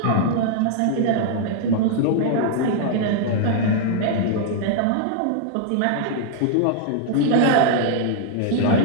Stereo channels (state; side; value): different; both; correlation -0.01